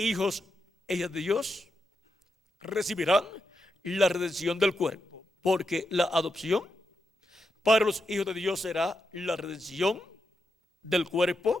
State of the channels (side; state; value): both; normal; correlation 0.85